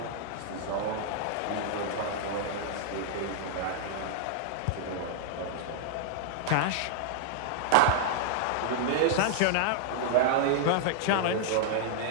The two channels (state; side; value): different; both; correlation -0.01